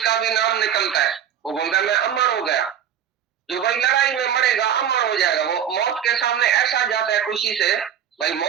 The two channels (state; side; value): quieter; left; 9.2 dB